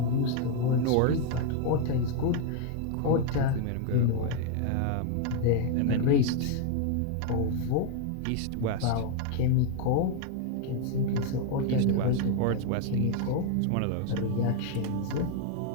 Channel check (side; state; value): both; different; correlation 0.00